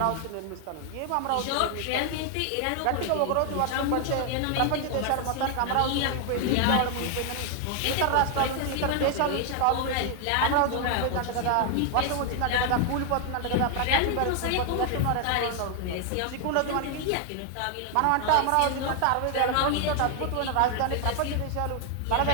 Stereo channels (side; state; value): both; different; correlation 0.00